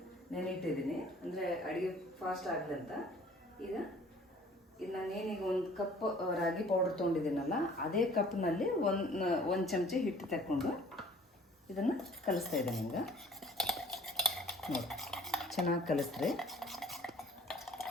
ನೆನೆಯಿಟ್ಟಿದ್ದೀನಿ, ಅಂದರೆ ಅಡುಗೆ ಫಾಸ್ಟ್ ಆಗಲಿ ಅಂತ. ಈಗ ಇದು ನಾನೇನೀಗ 1 ಕಪ್ ರಾಗಿ ಪೌಡರ್ ತೊಗೊಂಡಿದ್ದೀನಲ್ಲ, ಅದೇ ಕಪ್ನಲ್ಲಿ 1 ಚಮಚ ಹಿಟ್ಟು ತಗೊಂಡು ಇದನ್ನು ಕಲಿಸ್ತಾ ಇದ್ದೀನಿ. ಹಿಂಗೆ ನೋಡಿ, ಚೆನ್ನಾಗಿ ಕಲಿಸ್ರಿ.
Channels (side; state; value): both; normal; correlation 0.52